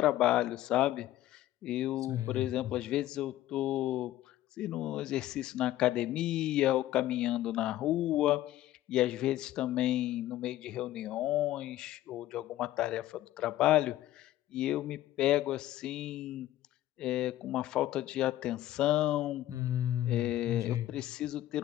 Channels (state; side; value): quieter; right; 14.3 dB